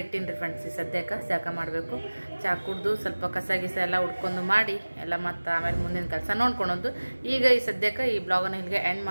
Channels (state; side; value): inverted; both; correlation -1.00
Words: ಇಟ್ಟಿನಿ ರೀ ಫ್ರೆಂಡ್ಸ್. ಈ ಸದ್ಯಕ್ಕೆ ಜಾಕ ಮಾಡಬೇಕು. ಚಹಾ ಕುಡ್ದು ಸ್ವಲ್ಪ ಕಸ ಗಿಸ ಎಲ್ಲ ಉಡ್ಕೊಂಡು ಮಾಡಿ ಎಲ್ಲ ಮತ್ತು ಆಮೇಲೆ ಮುಂದಿನ ಕೆಲಸ ನೋಡ್ಕೊಳೋದು. ಈಗ ಈ ಸದ್ಯಕ್ಕೆ ಈ ಬ್ಲಾಗನ್ನು ಇಲ್ಲಿಗೆ ಎಂಡ್